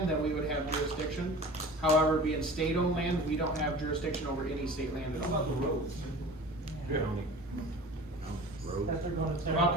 then we would have jurisdiction. However, being state-owned land, we don't have jurisdiction over any state land at How all. about the roads? Yeah. About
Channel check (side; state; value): both; normal; correlation 0.40